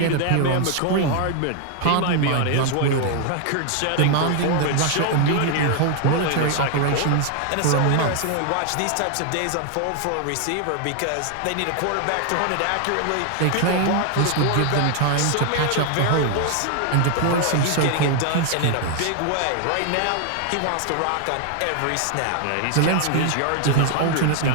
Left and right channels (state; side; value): different; both; correlation 0.00